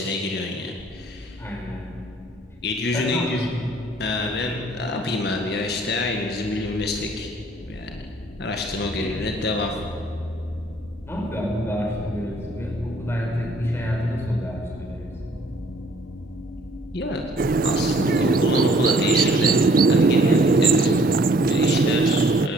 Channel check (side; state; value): both; normal; correlation 0.59